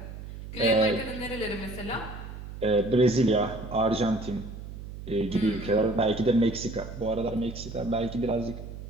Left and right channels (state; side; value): noise; right; hum, 11 dB below the sound